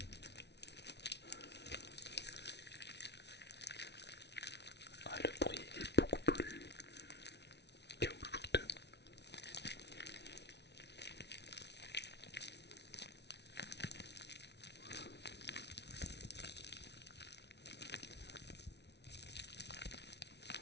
Ah, le bruit est beaucoup plus caoutchouteux.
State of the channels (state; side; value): late; right; 0.50 ms